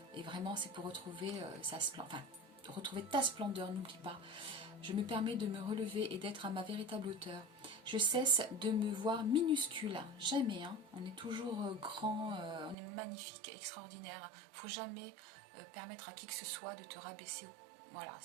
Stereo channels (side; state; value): left; drops out; at 12.8 s